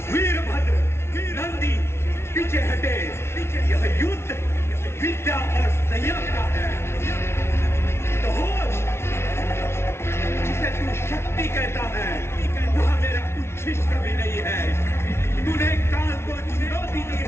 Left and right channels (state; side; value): late; right; 0.12 ms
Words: वीरभद्र, नंदी, पीछे हटे। यह युद्ध विद्या और संयम का है। जिसे तू शक्ति कहता है, वह मेरा उच्छिष्ट भी नहीं है। तूने काल को चुनौती दी